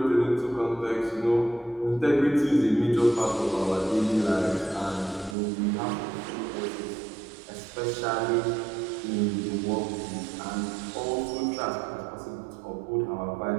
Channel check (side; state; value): left; drops out; at 5.4 s